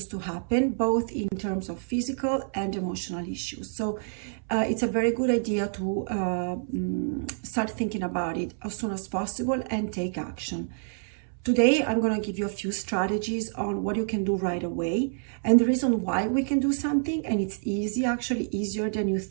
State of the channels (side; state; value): left; silent; 59 dB below the other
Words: to happen, both in terms of physical and emotional issues. So it's a very good idea to start thinking about it as soon as possible and take action. Today, I'm going to give you a few strategies on what you can do right away, and the reason why we can do something, and it's easy, actually easier than you